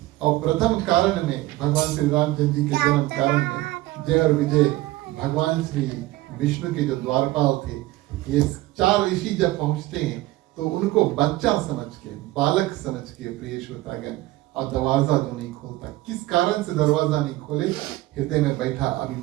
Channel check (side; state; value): left; quieter; 17.8 dB